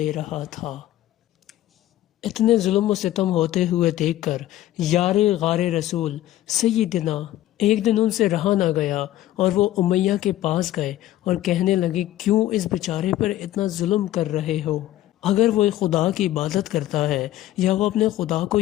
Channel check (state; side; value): quieter; right; 14.1 dB